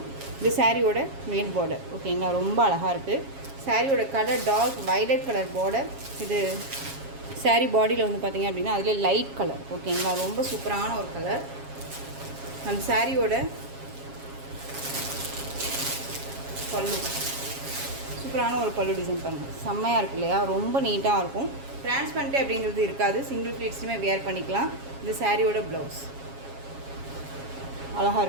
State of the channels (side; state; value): left; late; 7.3 ms